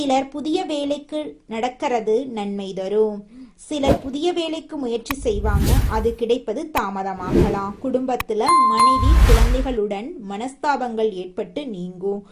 புதிய வேலைக்கு நடக்கிறது நன்மை தரும். சிலர் புதிய வேலைக்கு முயற்சி செய்வாங்க, அது கிடைப்பது தாமதமாகலாம். குடும்பத்துல மனைவி குழந்தைகளுடன் மனஸ்தாபங்கள் ஏற்பட்டு நீங்கும்.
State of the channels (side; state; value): both; identical; correlation 1.00